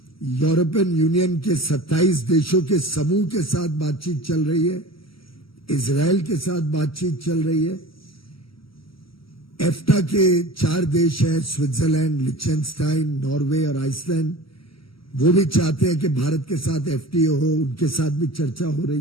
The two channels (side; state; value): right; late; 0.75 ms